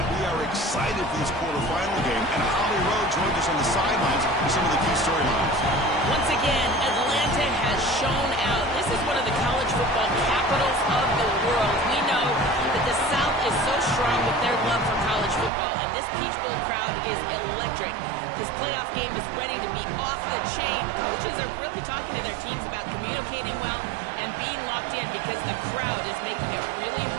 We are excited for this quarterfinal game, and Holly Rowe joins us on the sidelines with some of the key storylines. Once again, Atlanta has shown out. This is one of the college football capitals of the world. We know that the South is so strong with their love for college football, and this Peach Bowl crowd is electric. This playoff game is ready to be off the chain. Coaches are really talking to their teams about communicating well and being locked in because the crowd is making it really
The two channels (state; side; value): drops out; left; at 15.5 s